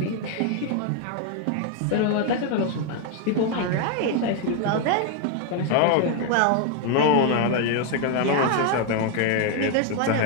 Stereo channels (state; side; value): different; both; correlation 0.01